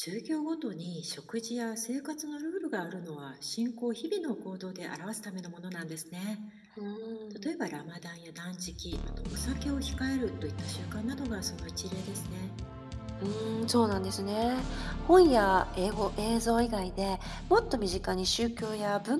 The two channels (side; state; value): both; identical; correlation 1.00